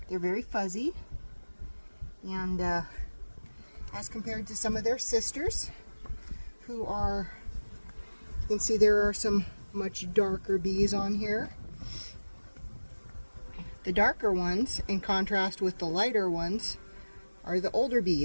They're very fuzzy, and as compared to some of their sisters, who are, you can see there are some much darker bees on here. The darker ones, in contrast with the lighter ones, are the older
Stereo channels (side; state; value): both; inverted; correlation -1.00